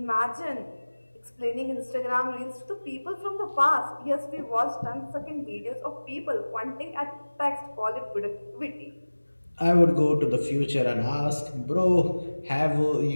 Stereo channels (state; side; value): inverted; both; correlation -1.00